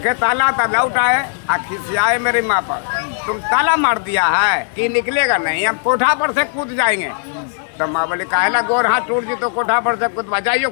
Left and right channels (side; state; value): right; silent; digital silence